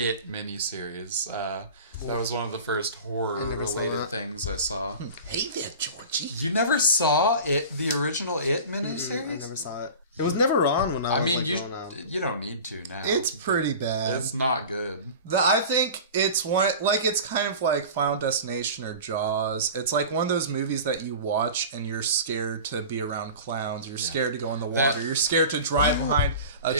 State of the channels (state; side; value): inverted; both; correlation -0.36